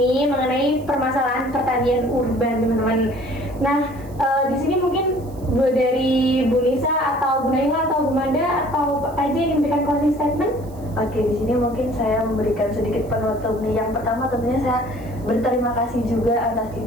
mengenai permasalahan pertanian urban, teman-teman. Nah, di sini mungkin dari Bu Nisa atau Bu Naila atau Bu Manda atau Pak Raja yang memberikan closing statement? Oke, di sini mungkin saya memberikan sedikit penutup nih. Yang pertama tentunya saya berterima kasih juga atas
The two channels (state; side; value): noise; right; hiss, 26 dB below the sound